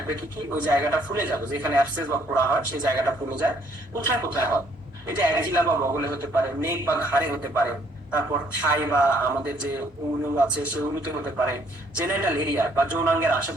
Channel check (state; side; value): normal; both; correlation 0.65